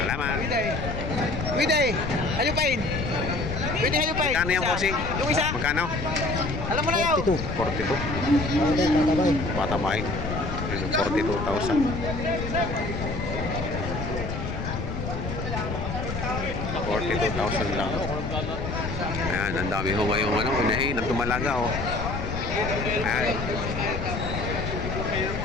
Widay, hayupin. Widay, hayupin. Magkano yung bossing? Yung isa. Magkano? Alam mo na yaw. 42. Patabay. 42,000. 42,000 lang. Ayan, ang dami ho ngayong unahin at tumalaga oh. Ayan.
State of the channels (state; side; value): noise; left; rumble, 4 dB below the sound